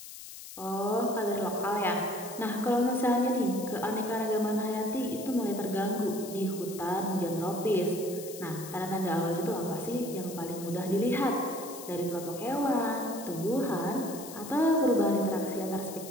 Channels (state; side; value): noise; left; hiss, 13 dB below the sound